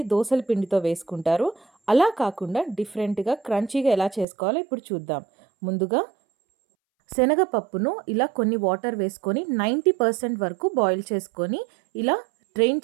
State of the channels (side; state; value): left; drops out; at 4.2 s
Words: దోసల పిండితో వేసుకుంటారు. అలా కాకుండా డిఫరెంట్గా క్రంచీగా ఎలా చేసుకోవాలో ఇప్పుడు చూద్దాం. ముందుగా శనగపప్పును ఇలా కొన్ని వాటర్ వేసుకొని 90% వరకు బాయిల్ చేసుకొని ఇలా డ్రైన్